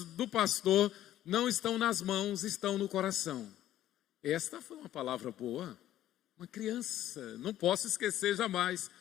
do pastor não estão nas mãos, estão no coração. Esta foi uma palavra boa. Uma criança, não posso esquecer jamais.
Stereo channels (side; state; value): right; quieter; 12.9 dB